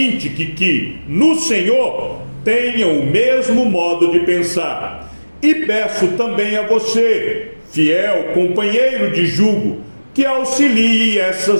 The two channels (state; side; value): inverted; both; correlation -1.00